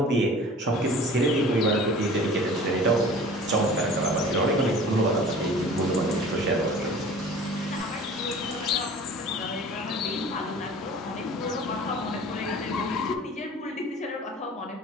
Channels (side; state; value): both; normal; correlation 0.44